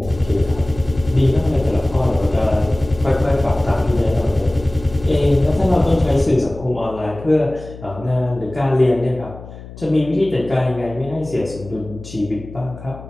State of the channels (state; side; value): noise; left; hum, 15 dB below the sound